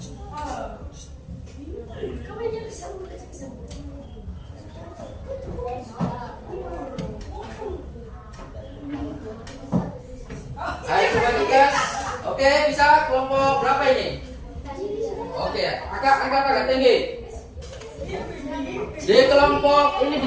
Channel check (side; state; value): both; identical; correlation 1.00